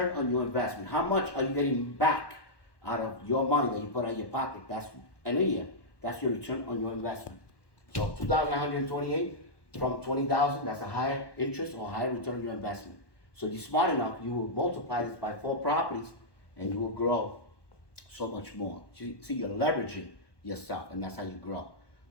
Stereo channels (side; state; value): right; late; 1.2 ms